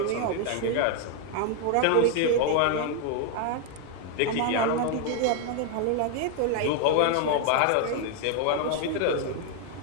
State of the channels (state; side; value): different; both; correlation 0.01